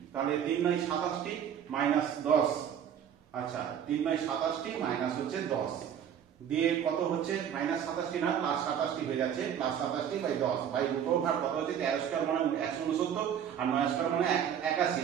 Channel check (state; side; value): quieter; left; 8.9 dB